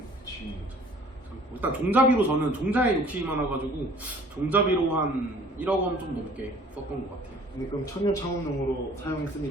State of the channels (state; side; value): normal; both; correlation 0.52